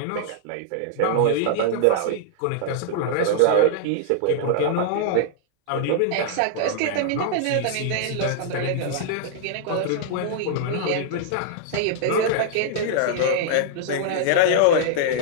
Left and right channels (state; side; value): different; both; correlation -0.01